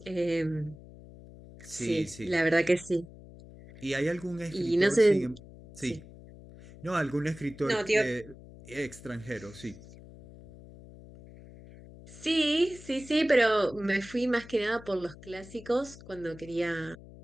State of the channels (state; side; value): noise; left; hum, 18 dB below the sound